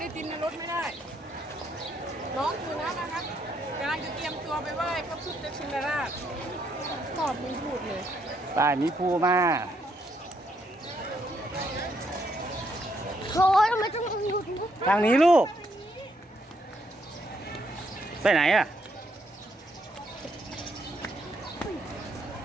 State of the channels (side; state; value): both; normal; correlation 0.74